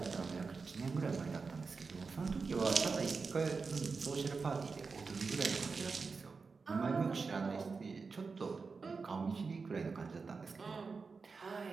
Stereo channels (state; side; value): quieter; left; 4.7 dB